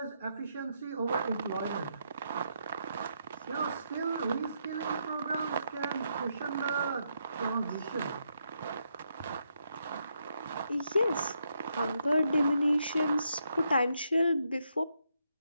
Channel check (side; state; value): both; inverted; correlation -0.79